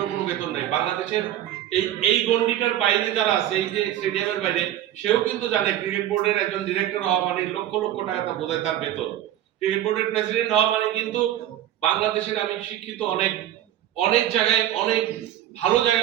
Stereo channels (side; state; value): left; quieter; 12.3 dB